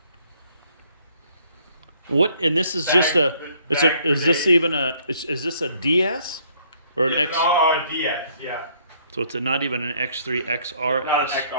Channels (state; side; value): inverted; both; correlation -0.64